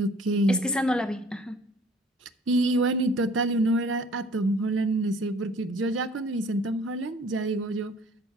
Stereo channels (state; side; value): normal; both; correlation 0.53